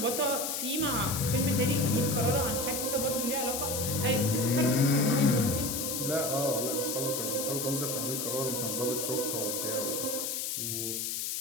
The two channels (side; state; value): left; noise; hiss, 2 dB below the sound